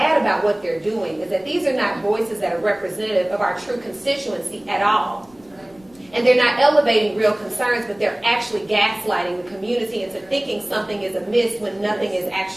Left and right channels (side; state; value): left; noise; rumble, 30 dB below the sound